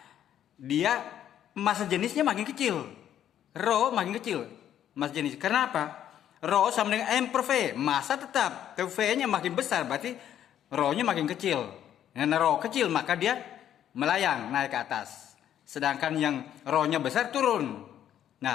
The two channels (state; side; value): quieter; right; 10.5 dB